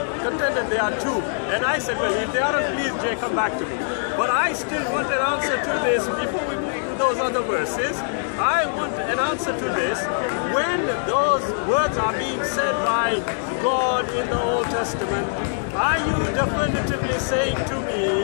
contended there are two, and I said, well, if they aren't, please, Jay, come back to me. But I still want an answer to this before we move to those other verses. I want an answer to this. When those words are being said by God in the Old Testament, are you definitively saying to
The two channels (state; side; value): silent; right; digital silence